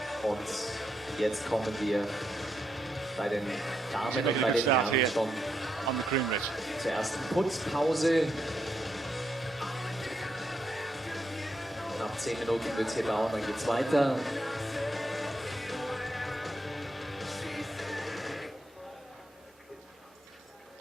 Und jetzt kommen wir bei den Damen und bei den Herren schon on the cream ridge. zur ersten Putzpause. Nach 10 Minuten wird es hier dauern, dann geht es weiter.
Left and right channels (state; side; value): normal; both; correlation 0.81